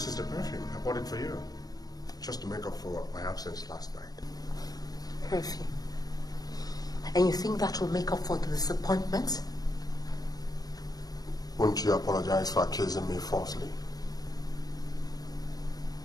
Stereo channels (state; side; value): late; right; 0.19 ms